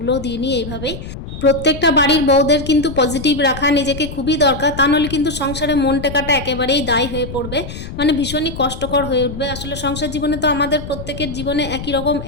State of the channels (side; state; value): left; noise; rumble, 10 dB below the sound